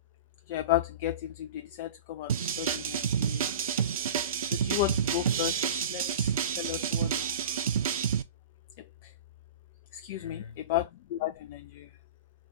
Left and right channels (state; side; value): inverted; both; correlation -0.33